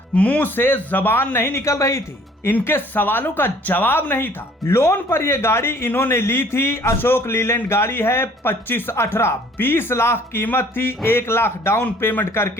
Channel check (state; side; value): normal; both; correlation 0.56